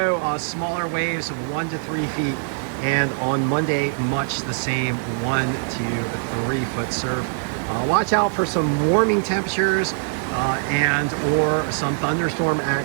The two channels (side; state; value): left; silent; digital silence